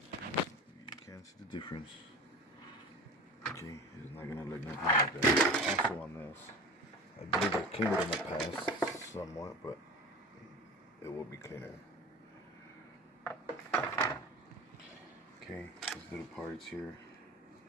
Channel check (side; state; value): both; normal; correlation 0.35